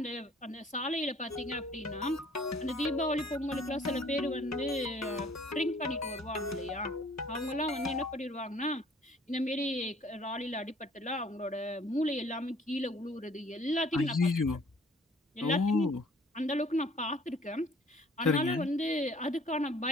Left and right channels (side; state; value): both; normal; correlation 0.56